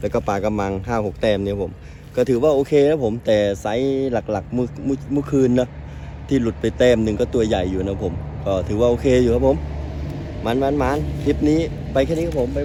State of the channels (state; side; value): identical; both; correlation 1.00